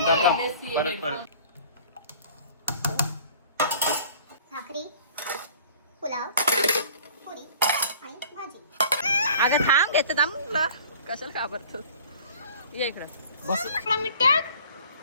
भाकरी, पुलाव, पुरी आणि भाजी. अगं थांब घेते थांब ना कशाला घाबरतो. ये इकडं बस मिनिट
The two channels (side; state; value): both; inverted; correlation -0.48